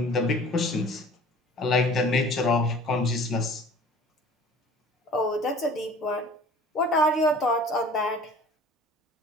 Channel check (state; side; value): normal; both; correlation 0.46